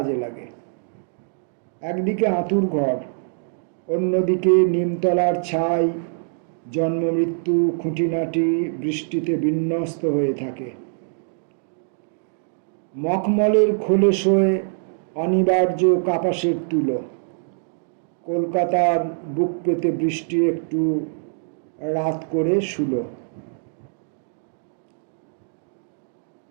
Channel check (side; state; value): left; silent; digital silence